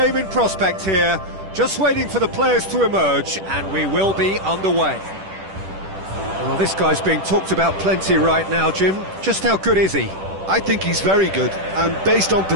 in prospect here, just waiting for the players to emerge, and we will be underway. Well, this guy's being talked about plenty right now, Jim. Just how good is he? I think he's very good, and based on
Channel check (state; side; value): late; left; 10 ms